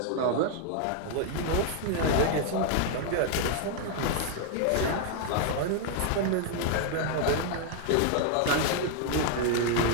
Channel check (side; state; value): both; different; correlation 0.00